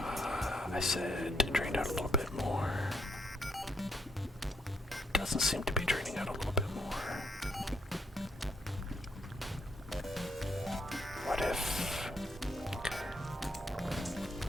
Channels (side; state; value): both; normal; correlation 0.76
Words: I said drain out a little bit more. Doesn't seem to be draining out a little bit more. What if... Okay.